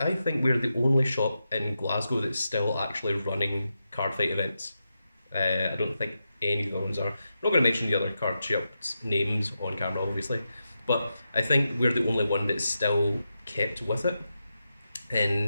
think we're the only shop in Glasgow that's still actually running card fight events. I don't think any of the ones are. I'm not going to mention the other card shops' names on camera, obviously, but I think we're the only one that's still kept with it.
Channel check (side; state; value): both; inverted; correlation -0.88